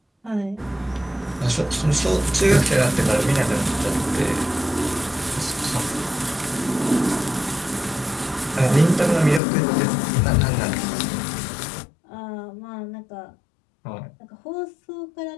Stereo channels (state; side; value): drops out; right; at 9.4 s